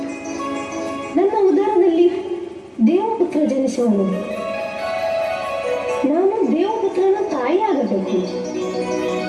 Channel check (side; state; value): both; identical; correlation 1.00